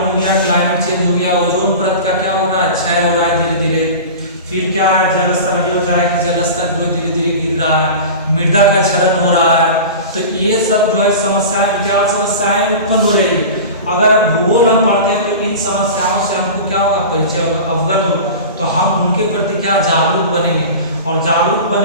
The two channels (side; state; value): both; inverted; correlation -0.33